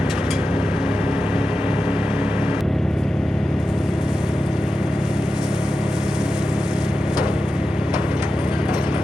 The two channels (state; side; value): normal; both; correlation 0.91